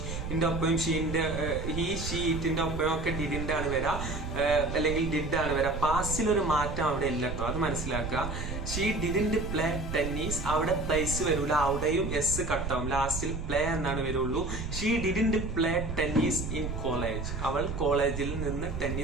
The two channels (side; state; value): right; noise; rumble, 5 dB below the sound